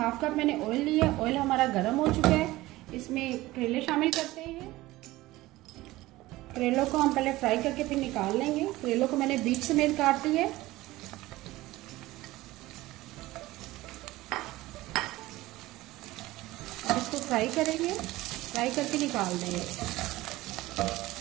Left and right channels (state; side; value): quieter; left; 18.2 dB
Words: कप मैंने ऑयल लिया। ऑयल हमारा गर्म हो चुका है। इसमें करेले शामिल करते हैं। करेलों को हम पहले फ्राई करके फिर निकाल लेंगे। करेलों को मैंने बीच समेत काट ली है। अब इसको फ्राई करेंगे, फ्राई करके निकाल देंगे।